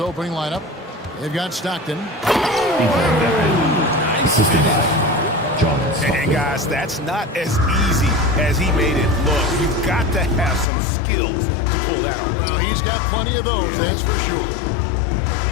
lineup, they've got Stockton. And guys, that's not as easy as he made it look. You've got to have some skills to pull that off. Well, he's got plenty of those, that's for sure.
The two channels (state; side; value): drops out; right; at 10.7 s